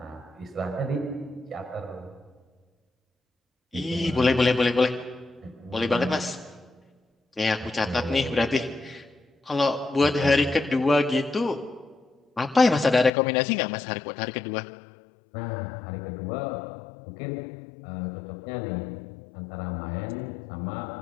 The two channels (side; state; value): right; drops out; at 13.1 s